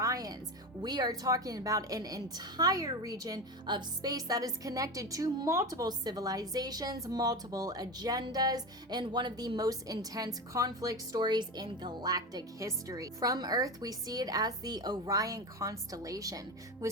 we are talking about an entire region of space that is connected to multiple civilizations, multiple agendas, and one of the most intense conflict stories in galactic history. From Earth, we see it as the Orion constellation,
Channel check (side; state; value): both; normal; correlation 0.23